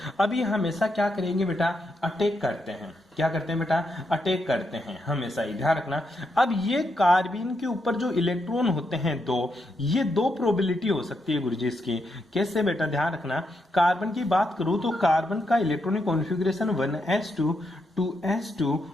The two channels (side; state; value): both; normal; correlation 0.81